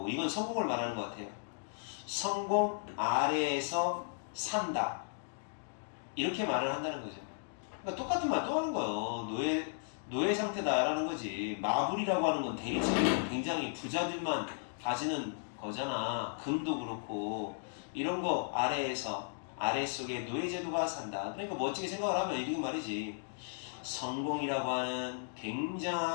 이건 성공을 말하는 것 같아요. 성공 아래에서 산다, 이렇게 말을 한다는 거죠. 그러니까 똑같은 말 또 하는 거예요. 노예 상태다라는 거지. 마블이라고 하는 건 대리석이 굉장히 부자들만 가지는 거잖아. 금도 그렇고 이런 거 아래속에 노예제도가 산다. 그러니까 멋지게 생각을 하면 이렇게 말이지. 성공이라고 하는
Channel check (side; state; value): right; silent; digital silence